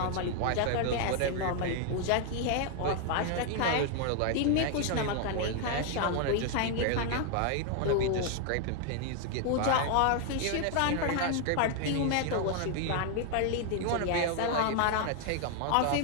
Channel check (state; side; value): different; both; correlation 0.00